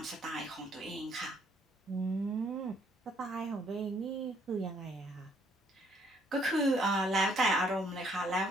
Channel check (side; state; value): both; normal; correlation 0.66